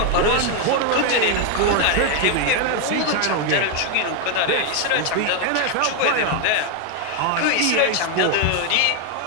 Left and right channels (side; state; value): both; different; correlation 0.01